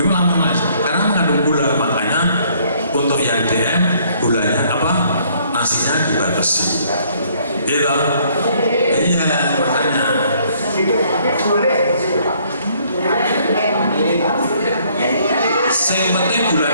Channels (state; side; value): inverted; both; correlation -0.64